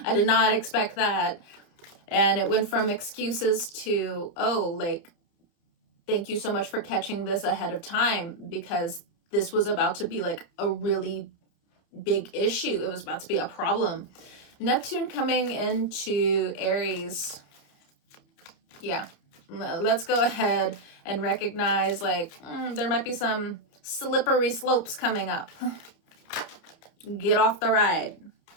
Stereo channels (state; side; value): late; right; 29 ms